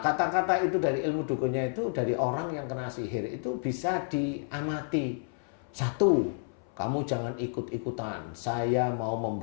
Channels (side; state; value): right; silent; 58 dB below the other